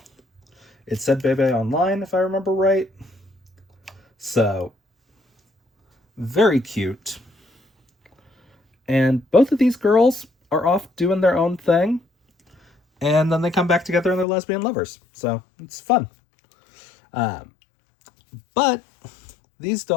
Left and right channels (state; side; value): drops out; right; at 14.2 s